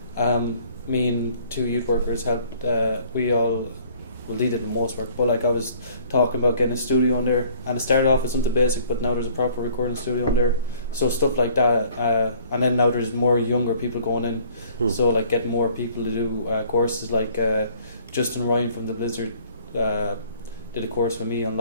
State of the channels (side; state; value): both; inverted; correlation -0.57